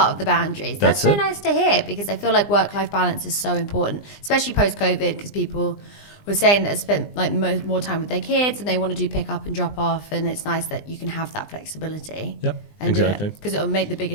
of the boundaries. That's so it. Nice to hear, because I feel like work-life balance is so important, especially post-COVID, because people were saying that they spent like more time with their kids and they want to do pick up and drop off, and it's nice that you can have that flexibility. Yep, and exactly. do it, because it'll make the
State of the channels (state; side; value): late; right; 20 ms